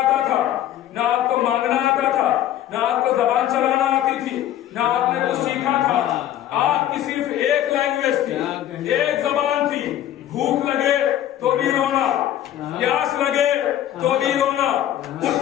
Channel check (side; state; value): right; quieter; 12.0 dB